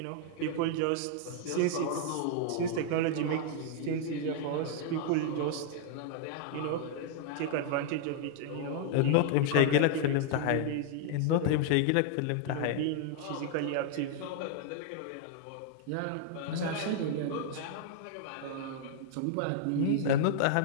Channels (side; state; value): both; different; correlation -0.01